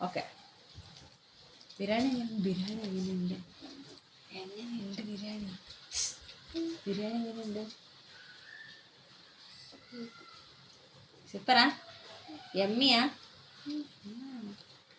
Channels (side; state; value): both; identical; correlation 1.00